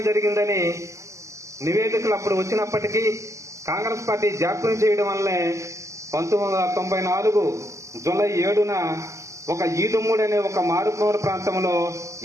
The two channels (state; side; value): late; left; 0.15 ms